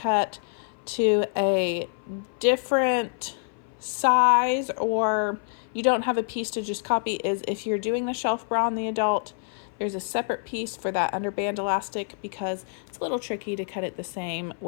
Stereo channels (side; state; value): right; silent; 56 dB below the other